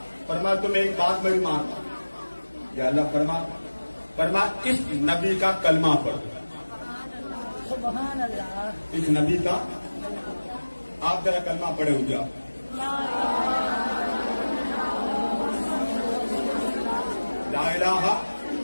فرمایا تم ایک بات میری مان. یا اللہ فرما فرمایا اس نبی کا کلمہ پڑھو. سبحان اللہ. اس نبی کا آپ ذرا کلمہ پڑھے ہوں گے آپ. لا الہ الا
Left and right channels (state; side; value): inverted; both; correlation -1.00